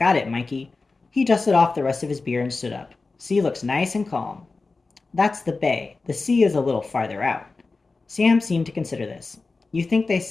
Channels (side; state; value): right; quieter; 3.8 dB